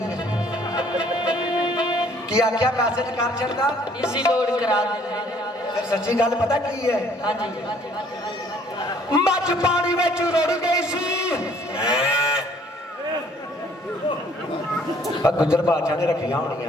की आख्या मैसेज कर छड़दा इजी लोड करा दे। फिर सच्ची गल पता की है? हाँ जी मच पानी में रुड़ गई सी, गुजर बादशाह ने रखिया होनी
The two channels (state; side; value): normal; both; correlation 0.60